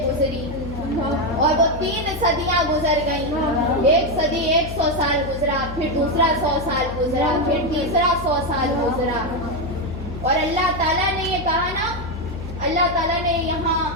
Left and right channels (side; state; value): left; noise; hum, 10 dB below the sound